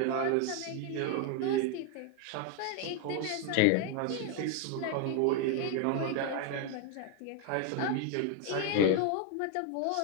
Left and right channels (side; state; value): both; different; correlation 0.01